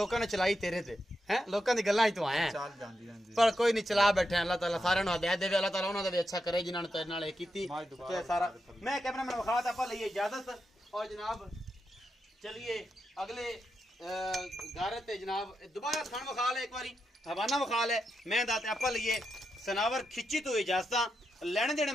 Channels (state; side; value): normal; both; correlation 0.86